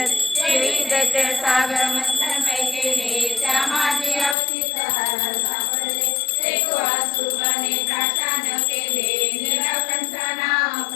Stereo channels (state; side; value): drops out; right; at 4.4 s